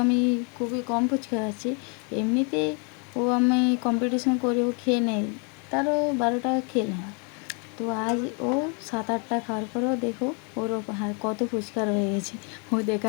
আমি খুবই কম ফুচকা খাচ্ছি, এমনিতে আমি কম্পিটিশন করে ও খেয়ে নেই, তারও 12টা খেলে না। তো আজ ও 7-8টা খাওয়ার পরেও দেখো ওর কত ফুচকা রয়ে গেছে, ও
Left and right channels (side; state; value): right; quieter; 36.0 dB